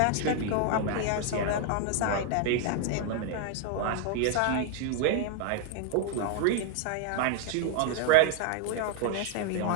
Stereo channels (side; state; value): both; different; correlation 0.00